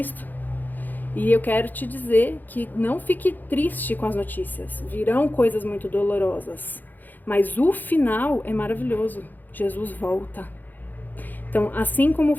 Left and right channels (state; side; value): late; right; 0.086 ms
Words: E eu quero te dizer que não fique triste com as notícias. Virão coisas muito dolorosas. Mas o final é maravilhoso. Jesus volta. Então, assim como